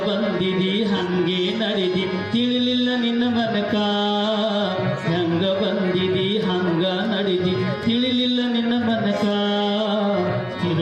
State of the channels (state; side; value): identical; both; correlation 1.00